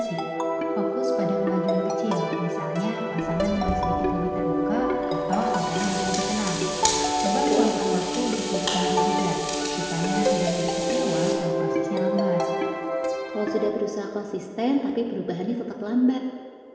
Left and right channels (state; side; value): identical; both; correlation 1.00